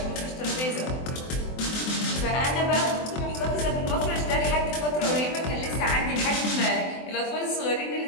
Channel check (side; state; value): right; late; 23 ms